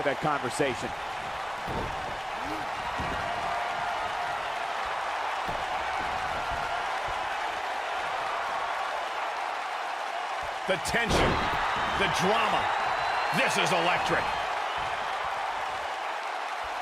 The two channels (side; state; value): both; identical; correlation 1.00